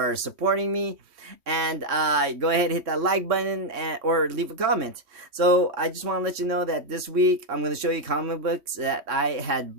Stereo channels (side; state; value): left; late; 3.1 ms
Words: supporting me. And go ahead and hit that like button or leave a comment. So I just want to let you know that this week I'm going to show you comic books that I had